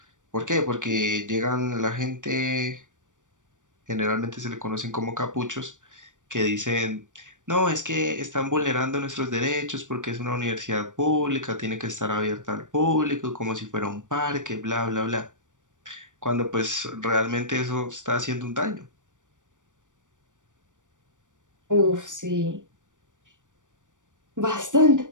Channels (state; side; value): late; left; 0.87 ms